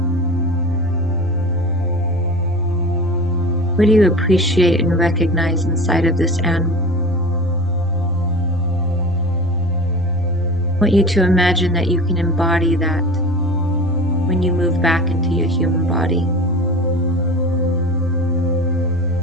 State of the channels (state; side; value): normal; both; correlation 0.34